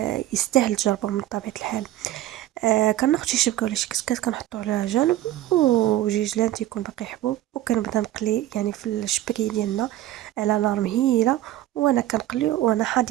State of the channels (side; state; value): left; quieter; 14.2 dB